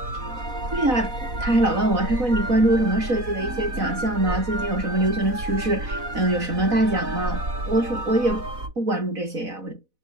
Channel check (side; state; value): left; late; 4.0 ms